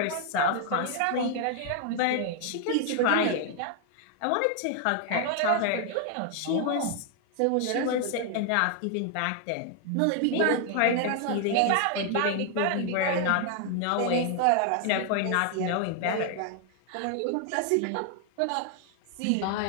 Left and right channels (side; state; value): both; different; correlation 0.00